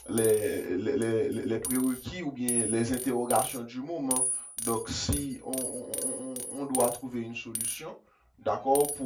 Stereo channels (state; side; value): identical; both; correlation 1.00